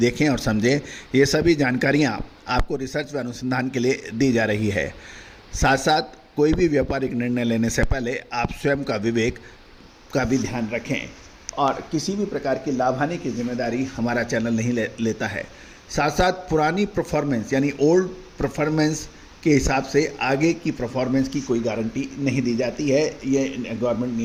और समझें। ये सभी जानकारियाँ आपको रिसर्च व अनुसंधान के लिए दी जा रही है। साथ साथ कोई भी व्यापारिक निर्णय लेने से पहले आप स्वयं का विवेक का भी ध्यान रखें और किसी भी प्रकार की लाभ हानि की जिम्मेदारी हमारा चैनल नहीं लेता है। साथ साथ पुरानी परफॉर्मेंस यानी ओल्ड परफॉर्मेंस के हिसाब से आगे की परफॉर्मेंस की कोई गारंटी नहीं दी जाती है, ये गवर्नमेंट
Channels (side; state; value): both; identical; correlation 1.00